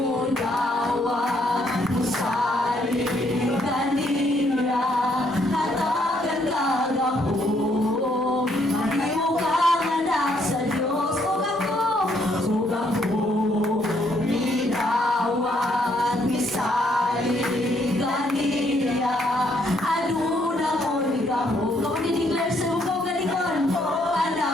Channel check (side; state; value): both; normal; correlation 0.70